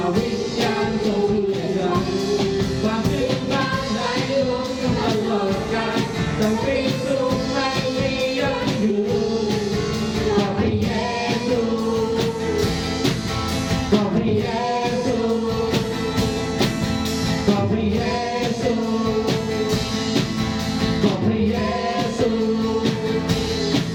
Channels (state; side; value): identical; both; correlation 1.00